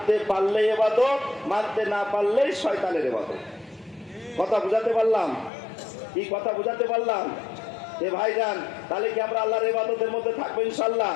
পারলে ইবাদত, মানতে না পারলেই শয়তানের ইবাদত। কথা বুঝাতে পারলাম? কি কথা বুঝাতে পারলাম? এ ভাইজান, তাহলে কি আমরা আল্লাহর ইবাদতের মধ্যে থাকবো ইনশাআল্লাহ?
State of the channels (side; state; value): right; drops out; at 5.5 s